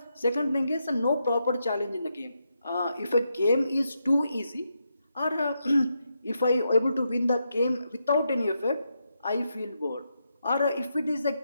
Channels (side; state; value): both; inverted; correlation -0.83